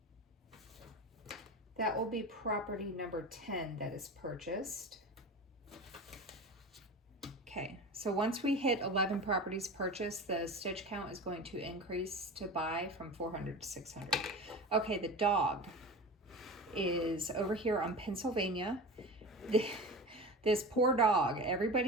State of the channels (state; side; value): normal; both; correlation 0.31